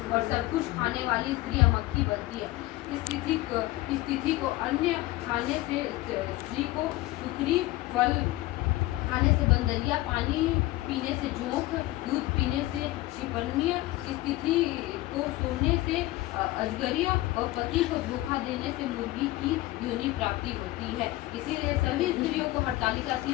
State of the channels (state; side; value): quieter; right; 18.0 dB